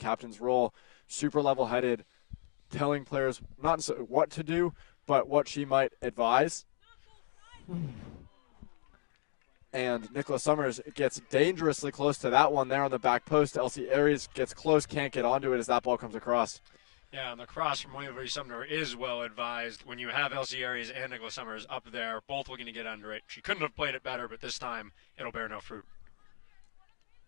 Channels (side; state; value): right; silent; 55 dB below the other